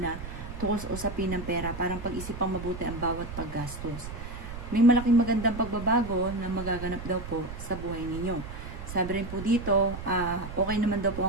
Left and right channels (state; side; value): noise; right; rumble, 10 dB below the sound